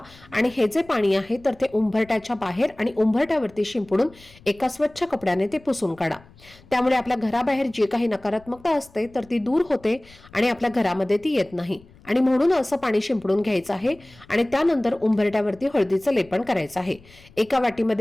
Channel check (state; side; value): noise; left; rumble, 25 dB below the sound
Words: आणि हे जे पाणी आहे तर ते उंबरठ्याच्या बाहेर आणि उंबरठ्यावरती शिंपडून एका स्वच्छ कपड्याने ते पुसून काढा. त्यामुळे आपल्या घराबाहेर जी काही नकारात्मकता असते तर ती दूर होते आणि आपल्या घरामध्ये ती येत नाही आणि म्हणून असं पाणी शिंपडून घ्यायचं आहे आणि त्यानंतर उंबरठ्यावरती हळदीचं लेपन करायचं आहे. एका